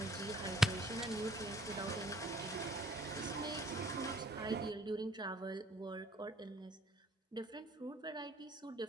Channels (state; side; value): normal; both; correlation 0.58